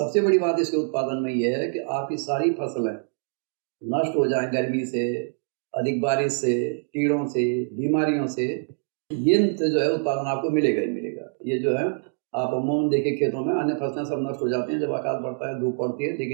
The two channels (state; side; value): silent; left; digital silence